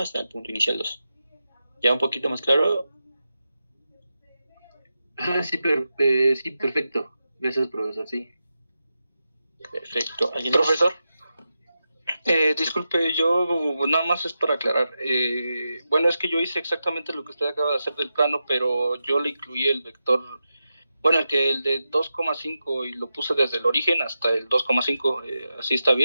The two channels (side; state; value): both; inverted; correlation -0.90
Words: el punto inicial 2. ¿Ya un poquito más claro? Sí, sí, perfecto. Gracias, profesor, sí. Perfecto. ¿Alguien Profesor, disculpe, yo nada más es para aclarar. Bueno, es que yo hice exactamente lo que usted acaba de hacer del plano, pero yo le incluí el vector, bueno, el de 2,5 y lo puse desde el origen hasta el 2,5. ¿Así está